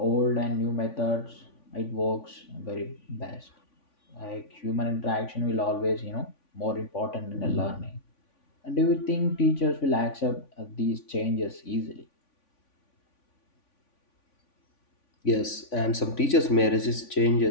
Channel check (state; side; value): late; right; 3.5 ms